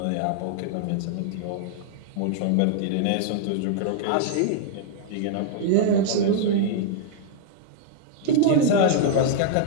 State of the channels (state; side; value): different; both; correlation -0.01